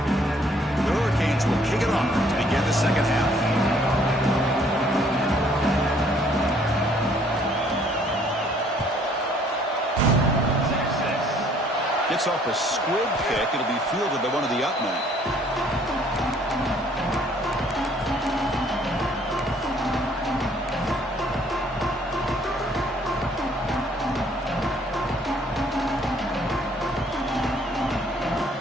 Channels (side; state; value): both; normal; correlation 0.61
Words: The Hurricanes will kick it off to begin the second half. Gets off a squib kick. It'll be fielded by one of the up men.